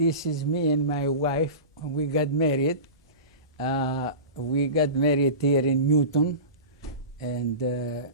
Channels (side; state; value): both; inverted; correlation -0.31